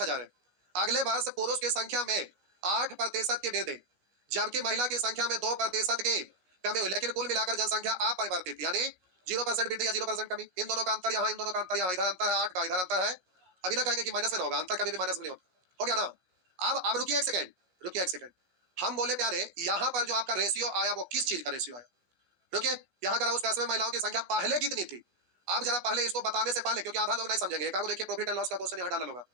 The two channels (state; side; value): late; left; 15 ms